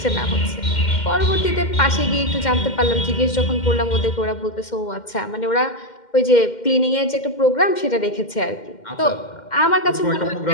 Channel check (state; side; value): late; right; 2.1 ms